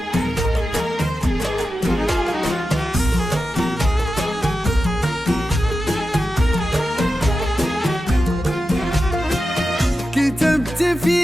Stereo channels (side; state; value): both; normal; correlation 0.91